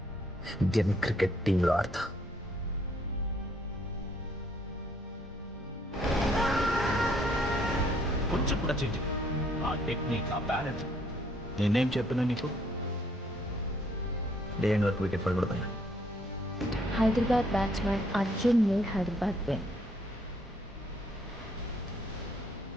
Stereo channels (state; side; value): normal; both; correlation 0.67